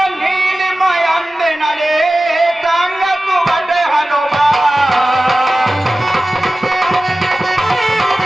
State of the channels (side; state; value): both; normal; correlation 0.96